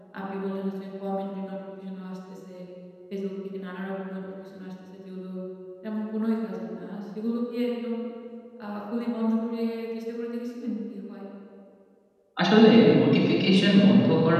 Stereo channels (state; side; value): identical; both; correlation 1.00